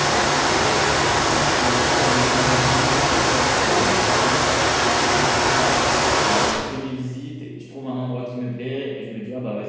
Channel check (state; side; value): identical; both; correlation 1.00